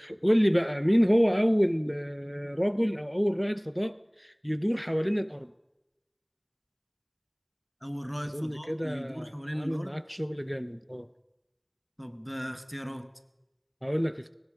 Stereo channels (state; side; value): identical; both; correlation 1.00